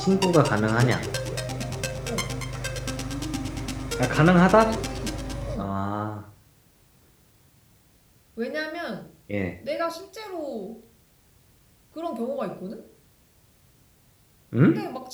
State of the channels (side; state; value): both; identical; correlation 1.00